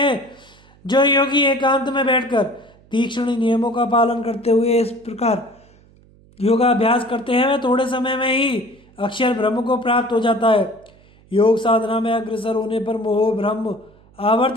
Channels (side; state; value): right; noise; hum, 28 dB below the sound